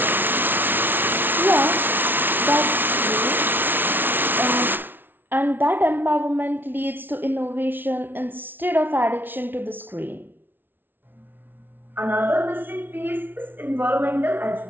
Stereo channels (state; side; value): late; left; 0.097 ms